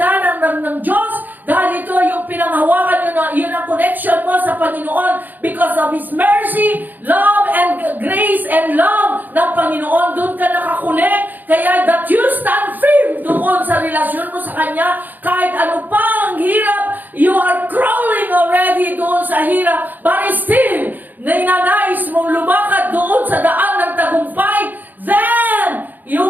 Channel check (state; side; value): late; left; 0.086 ms